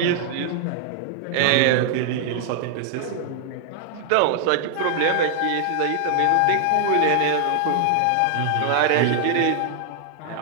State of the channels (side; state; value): both; different; correlation 0.00